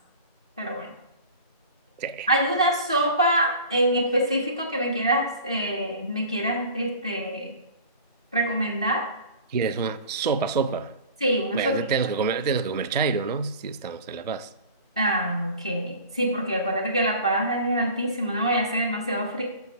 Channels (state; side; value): inverted; both; correlation -0.40